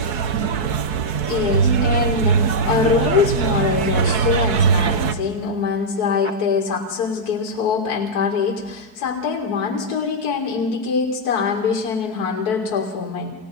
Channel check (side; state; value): right; late; 4.6 ms